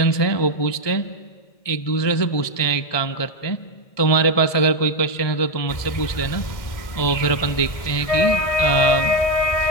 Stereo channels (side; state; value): right; late; 1.7 ms